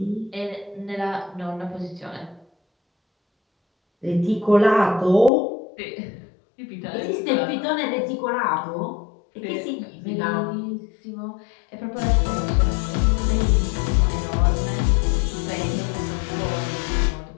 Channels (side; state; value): right; drops out; at 5.3 s